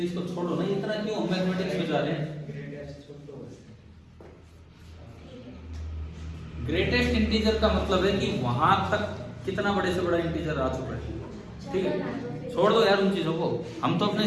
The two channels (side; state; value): both; identical; correlation 1.00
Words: इसको छोड़ो ना, इतना क्यों हम मैथमेटिक्स में जा रहे हैं? ग्रेटेस्ट इंटीजर का मतलब है कि वहां तक कितना बड़े से बड़ा इंटीजर आ चुका है, ठीक है? छोड़ दो यार उन चीजों को, हम तो अपने